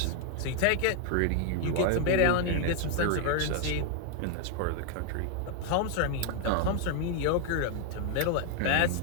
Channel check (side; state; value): both; different; correlation 0.00